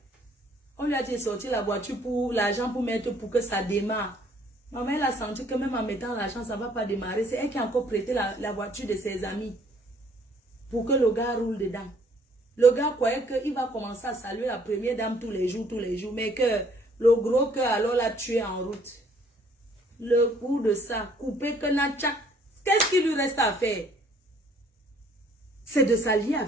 On lui a dit sortir la voiture pour l'argent pour mettre pour que ça démarre. Maman, elle a senti que même en mettant l'argent, ça ne va pas démarrer. C'est elle qui a encore prêté la voiture de ses amis pour que le gars roule dedans. Le gars croyait qu'il va commencer à saluer la première dame tous les jours, mais que le gros cœur alors l'a tué en route. Le coup de ça, couper que Natchak, qu'est-ce qu'il lui reste à faire? C'est de s'allier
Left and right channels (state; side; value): normal; both; correlation 0.61